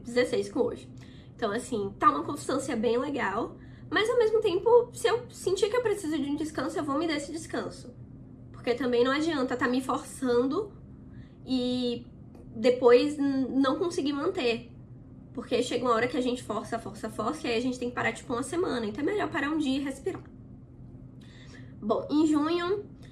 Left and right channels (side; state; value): both; identical; correlation 1.00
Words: com hoje. Então, assim, tá uma constância bem legal. Mas, ao mesmo tempo, se eu sentir que eu preciso de um descanso, eu vou me dar esse descanso. Porque também não adianta tá me forçando e depois não conseguir manter. Porque chega uma hora que a gente força, e aí a gente tem que parar, tipo, uma semana. Então é melhor parar um dia e respirar. Bom, em junho